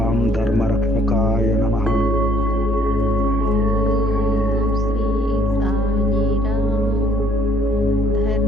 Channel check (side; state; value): right; noise; hum, 25 dB below the sound